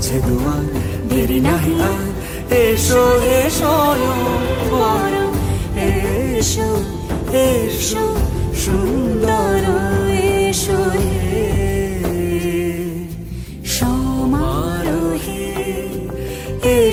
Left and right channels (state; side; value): identical; both; correlation 1.00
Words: দুয়ার দেরি নাহি আর এসো এসো বড় এসো এসো সুন্দর এসো হে সমারোহে